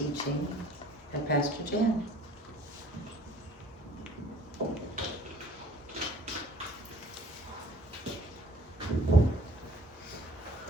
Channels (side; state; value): both; normal; correlation 0.54